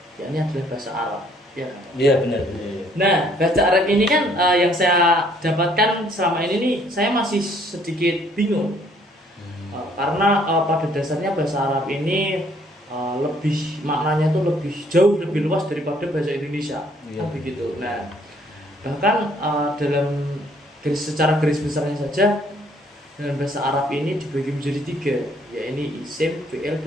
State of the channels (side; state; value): both; normal; correlation 0.63